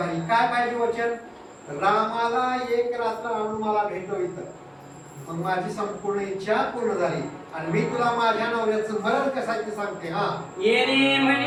काय पाहिजे वचन? रामाला एक रात्र आणून मला भेटव इथं, मग माझी संपूर्ण इच्छा पूर्ण झाली आणि मी तुला माझ्या नवऱ्याचं मरण कसं ते सांगते. हा येणे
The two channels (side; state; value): both; identical; correlation 1.00